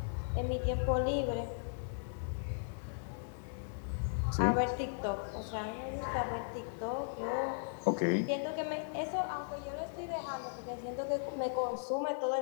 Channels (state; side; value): silent; right; digital silence